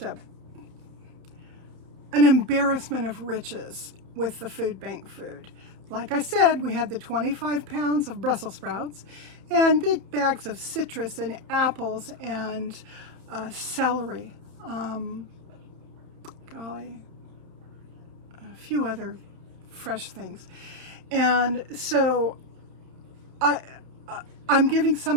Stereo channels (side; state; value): left; late; 31 ms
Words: embarrassment of riches with the food bank food. Like I said, we had the 25 pounds of Brussels sprouts and big bags of citrus and apples and celery. A few other fresh things. And so I'm giving